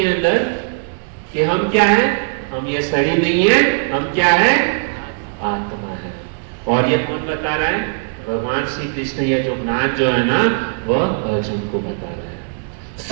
अंदर कि हम क्या है, हम ये शरीर नहीं है, हम क्या है, आत्मा है। और ये कौन बता रहा है? भगवान श्री कृष्ण। ये जो ज्ञान जो है ना वह अर्जुन को बता रहे हैं।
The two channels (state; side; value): silent; left; digital silence